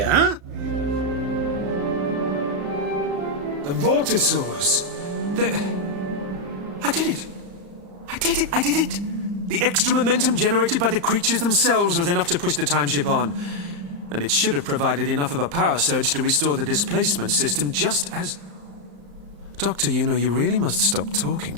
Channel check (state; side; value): late; left; 35 ms